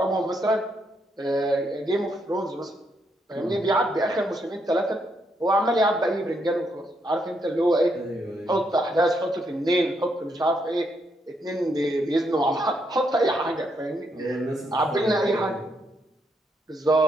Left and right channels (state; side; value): normal; both; correlation 0.77